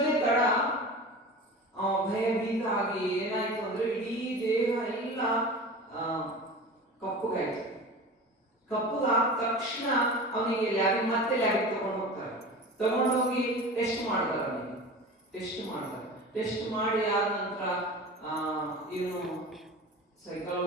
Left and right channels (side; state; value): both; normal; correlation 0.34